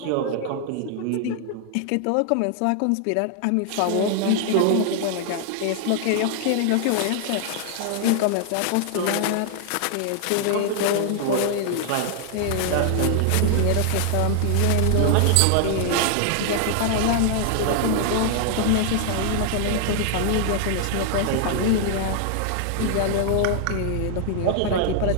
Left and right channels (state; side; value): different; both; correlation 0.00